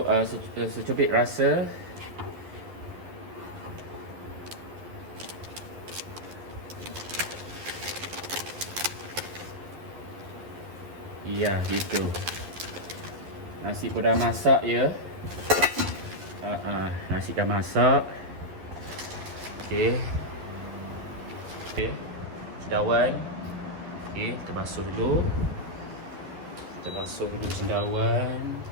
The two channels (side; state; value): left; late; 11 ms